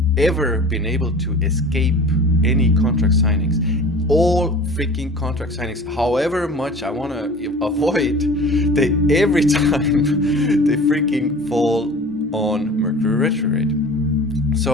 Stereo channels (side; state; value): both; normal; correlation 0.41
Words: ever been able to escape any contract signings. All freaking contract signings, however much I want to avoid, they every time they freaking fall on Mercury retrograde.